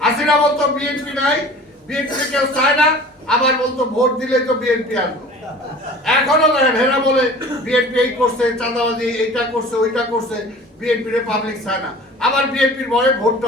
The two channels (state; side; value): normal; both; correlation 0.43